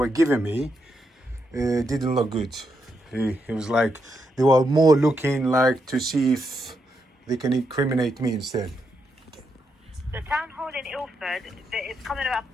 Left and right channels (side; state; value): both; normal; correlation 0.82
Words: giving me didn't look good. It was like they were more looking like to see if they can incriminate me instead. The town hall in Ilford, it's coming up